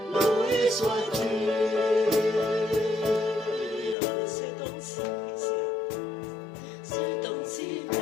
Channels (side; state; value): right; drops out; at 4.0 s